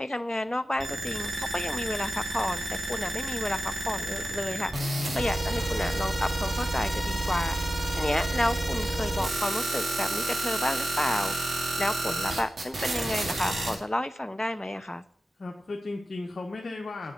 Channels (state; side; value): normal; both; correlation 0.93